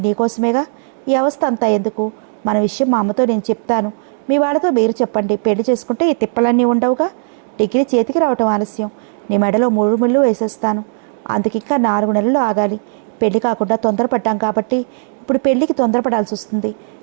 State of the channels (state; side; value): silent; left; digital silence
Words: నీకోసమేగా. ఈ అవస్థ అంతా ఎందుకు? మన విషయం మా అమ్మతో నేను చెప్తాను. మీ వాళ్ళతో మీరు చెప్పండి. పెళ్లి చేసుకుంటే ఈ తిప్పలన్నీ ఉండవుగా. డిగ్రీ చేతికి రావటం ఆలస్యం. నీ మెడలో 3 ముళ్ళు వేసేస్తాను. అందుకింకా 4 నెలలు ఆగాలి. పెళ్లి కాకుండా తొందరపడ్డాం కాబట్టి ఇప్పుడు పెళ్లికి తొందరపడాల్సి వస్తుంది.